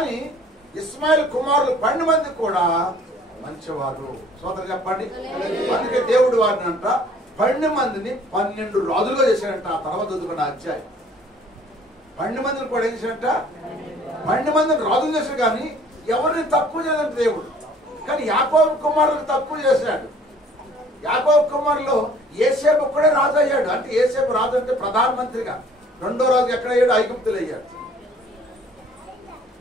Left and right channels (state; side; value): normal; both; correlation 0.54